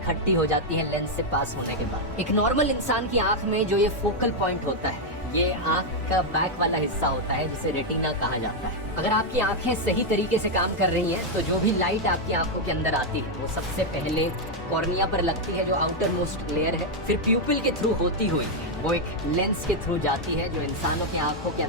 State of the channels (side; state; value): both; normal; correlation 0.00